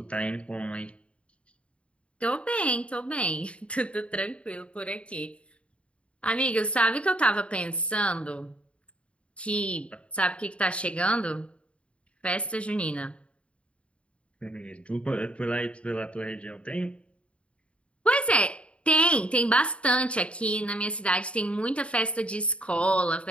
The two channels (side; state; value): right; late; 0.060 ms